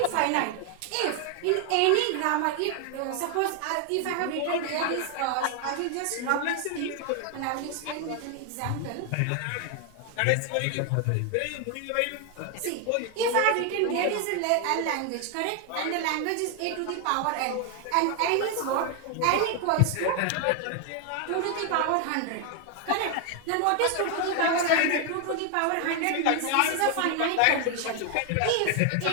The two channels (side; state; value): both; different; correlation 0.01